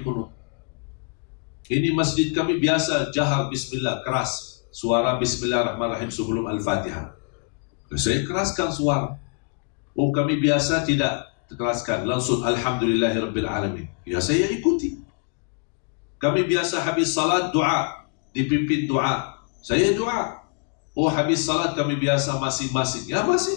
kunut. Ini masjid kami biasa jahar bismillah, keras suara bismillahirrahmanirrahim sebelum al-fatihah, saya keraskan suara. Oh, kami biasa tidak keraskan, langsung alhamdulillahirabbil alamin, ya saya ikuti. Kami biasa habis salat doa, dipimpin doa, saya doa. Oh, habis salat kami biasa masing-masing, ya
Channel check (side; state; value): right; quieter; 36.8 dB